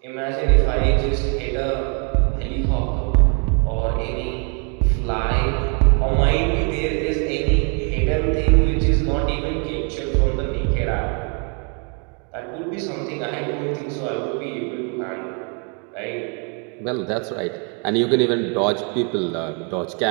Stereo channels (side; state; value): left; quieter; 37.9 dB